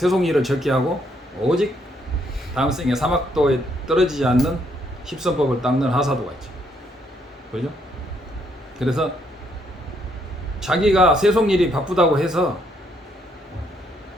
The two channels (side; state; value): both; normal; correlation 0.72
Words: 적게 하고 오직 다음 생에 사막도에 떨어지지 않는 십선법을 닦는 하사도가 있죠. 그죠? 그래서 자기가 세속일이 바쁘다고 해서